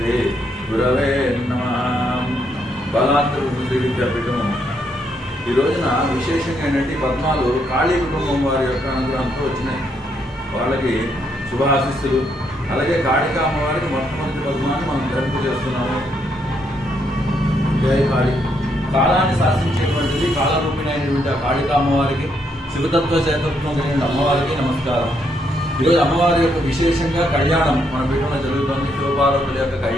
गुरवे नमः। బలాత్ర శ్రీ విద్యాపీఠం ఈ రోజున విశేషంగా ఏంటంటే పద్మాలు కాళీ కుటుంబం వారి యొక్క అనుగ్రహంతో వచ్చినాయి. వాళ్ళకి శుభాశిస్సులు. అలాగే కాళికా అమ్మవారికి మొట్టమొదటి పద్మాన్ని మనం ధరింపు చేస్తున్నాము. జై కాళి. కాలాన్ని శాసించేటువంటిది కాలరూపిణి అయినటువంటి ఆ కాళికా అమ్మవారికి, శివతత్వ చేతత్వం కలిగిన అమ్మవారికి నమస్కారం. ఈరోజు అమ్మవారి యొక్క విశేషంగా కళ్యాణం మన పీఠంలో జరుగుతుంది. శివపార్వతుల యొక్క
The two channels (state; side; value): normal; both; correlation 0.75